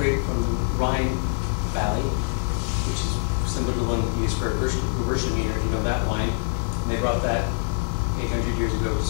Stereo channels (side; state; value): right; silent; digital silence